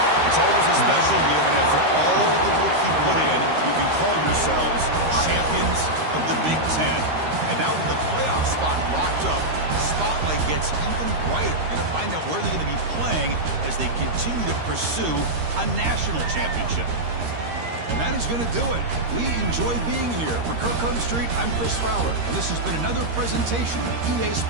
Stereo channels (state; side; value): late; left; 13 ms